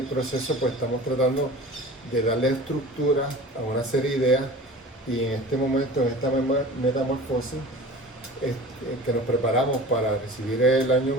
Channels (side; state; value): both; normal; correlation 0.39